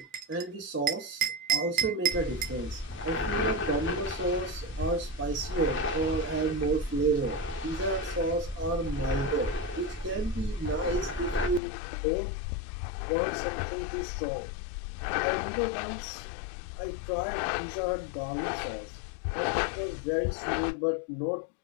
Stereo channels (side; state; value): right; drops out; at 11.6 s